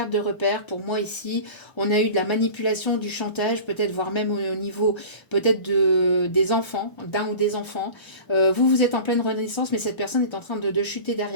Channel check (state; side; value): late; right; 1.0 ms